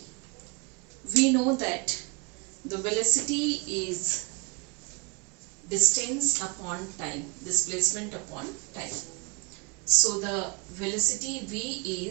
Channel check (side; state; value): left; quieter; 32.8 dB